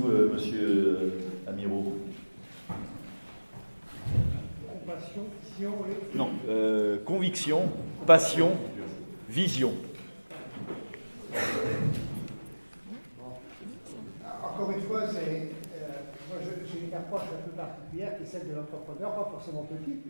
monsieur Amirault? Passion, vision, oui. Non, conviction, passion, vision. Encore une fois, moi j'ai une approche un peu particulière qui est celle de l'entrepreneur, pas forcément petit,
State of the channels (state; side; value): inverted; both; correlation -1.00